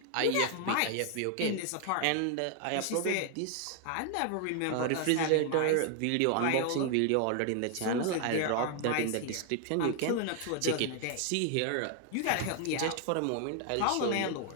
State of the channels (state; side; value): different; both; correlation 0.00